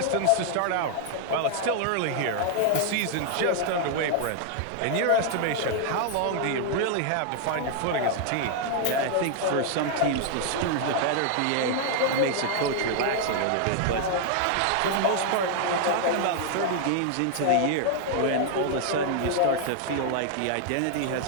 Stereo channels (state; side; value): different; both; correlation 0.00